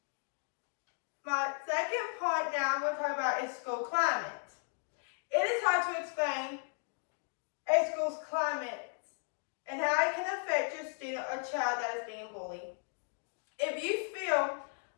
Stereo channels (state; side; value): silent; right; 54 dB below the other